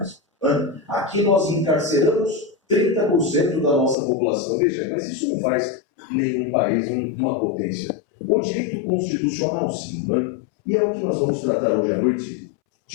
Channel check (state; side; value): drops out; right; at 4.0 s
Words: Aqui nós encarceramos 30% da nossa população. Veja, mas isso não faz nenhum país uma potência. O direito constitucional, sim, né? E é o que nós vamos tratar hoje à noite,